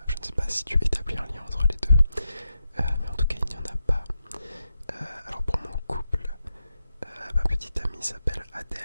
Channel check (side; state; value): both; inverted; correlation -0.87